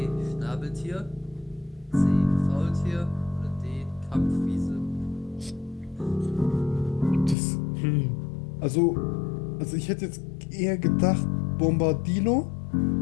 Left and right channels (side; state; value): right; drops out; at 7.4 s